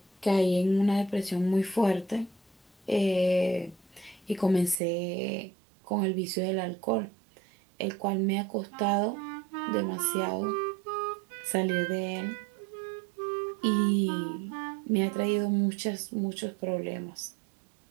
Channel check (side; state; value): left; drops out; at 4.8 s